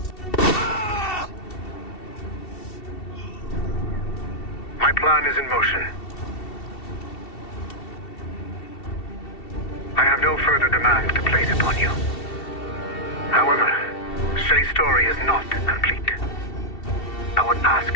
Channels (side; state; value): right; late; 2.7 ms